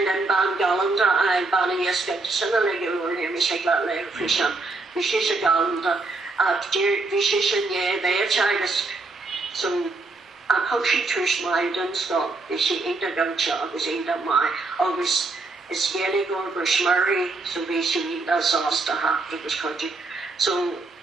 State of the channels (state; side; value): quieter; left; 3.4 dB